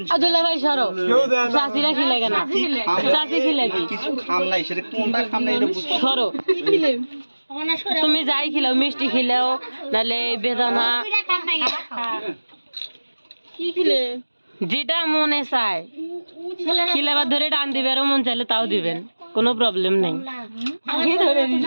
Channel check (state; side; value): inverted; both; correlation -1.00